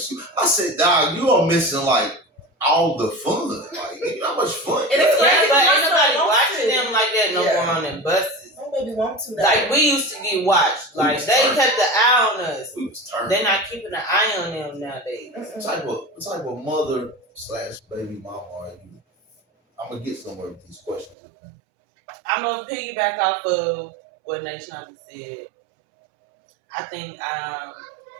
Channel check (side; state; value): left; drops out; at 21.2 s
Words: I said, dog, you are missing like all the fun. Like, how much fun? And it's crazy, but ain't nobody watching them like that no more on them buses. Don't maybe want to. Like we used to get watched. Like they kept the eye on us. We was turning. They're not keeping an eye on them nowadays. What type of mother / baby mama are you? I'm gonna get somewhere with these questions. I'm gonna piggyback off of what Nashonda said. I think I'm